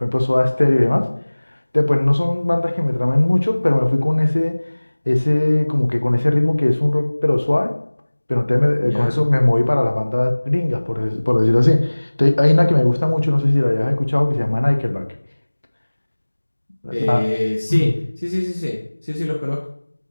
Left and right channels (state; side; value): inverted; both; correlation -1.00